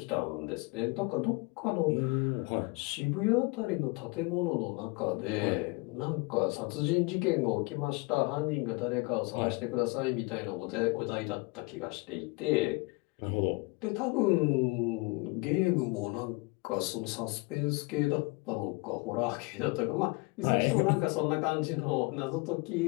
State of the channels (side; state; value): right; quieter; 27.2 dB